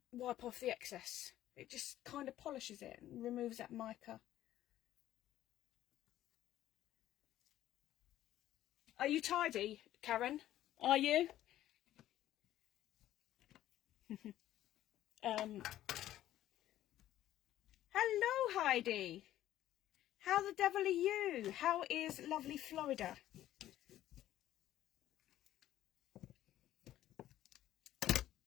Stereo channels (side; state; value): right; quieter; 13.2 dB